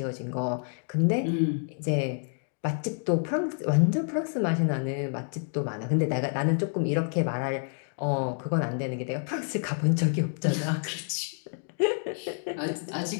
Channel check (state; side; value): silent; right; 59 dB below the other